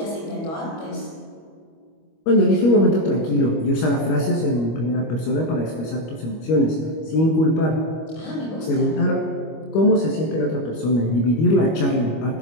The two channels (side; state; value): right; late; 25 ms